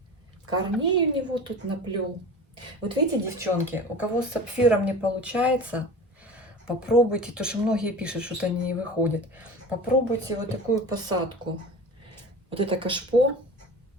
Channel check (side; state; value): both; normal; correlation 0.35